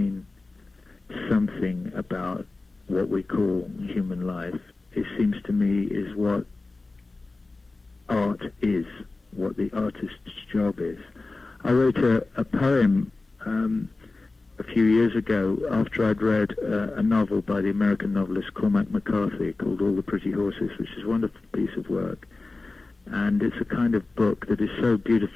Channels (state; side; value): quieter; right; 3.4 dB